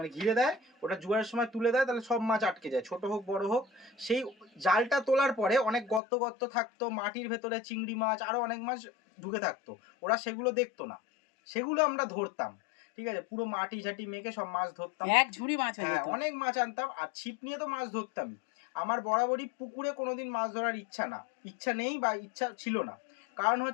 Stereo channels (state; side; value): drops out; right; at 6.0 s